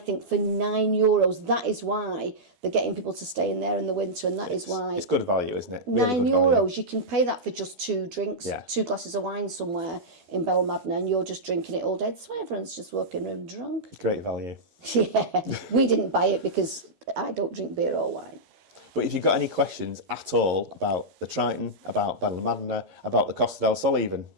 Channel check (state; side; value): late; left; 12 ms